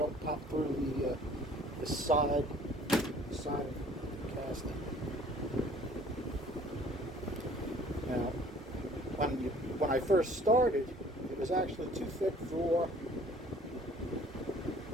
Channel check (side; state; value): both; normal; correlation 0.53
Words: pop through the side of the casting. Now, when I first started, it was actually too thick for